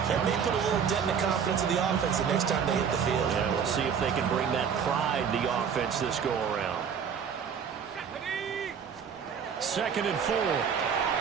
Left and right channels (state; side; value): quieter; left; 7.1 dB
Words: that may put a little dent in the confidence of the offense the next time they hit the field. Yeah, we'll see if they can bring that pride the offense this go-around. 2nd and 4.